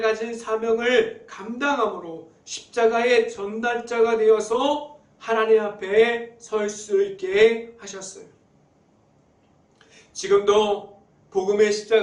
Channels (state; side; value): identical; both; correlation 1.00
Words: 사명을 감당함으로 십자가의 전달자가 되어서 하나님 앞에 설 수 있게 하셨어요. 지금도 복음의